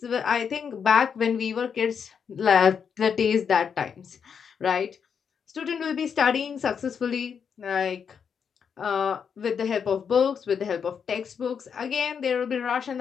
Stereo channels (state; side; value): quieter; right; 6.9 dB